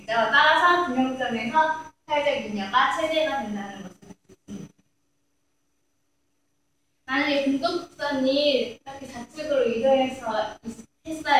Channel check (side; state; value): both; identical; correlation 1.00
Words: 따라서 균형점에서 사회적 잉여가 최대가 된다는 것을 알 수 있습니다. 만약에 공급선이 이렇게 좌측으로 이동해서